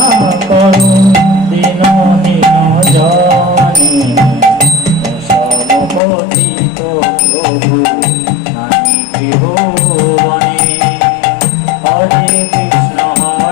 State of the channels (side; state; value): right; drops out; at 6.0 s